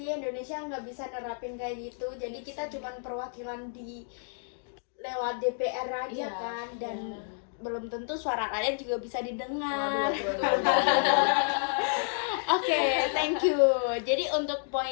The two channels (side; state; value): right; silent; digital silence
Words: Indonesia nggak bisa nerapin kayak gitu. Jadi kita cuman perwakilan di lewat DPR aja Iya, kan, dan iya. belum tentu suara rakyat juga bisa didengar. Waduh. Oke, thank you. Jadi untuk